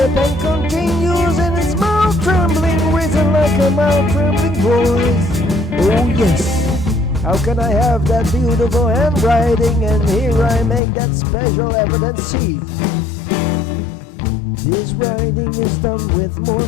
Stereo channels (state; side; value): drops out; right; at 10.8 s